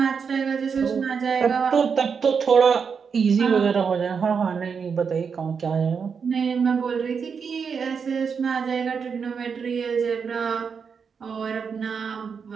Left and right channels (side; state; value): left; quieter; 6.1 dB